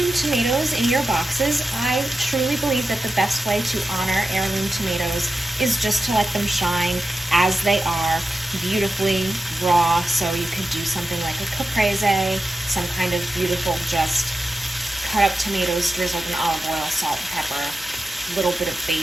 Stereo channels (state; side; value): normal; both; correlation 0.92